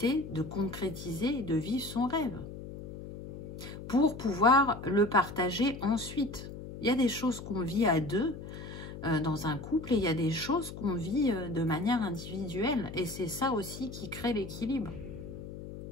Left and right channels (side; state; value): left; noise; hum, 11 dB below the sound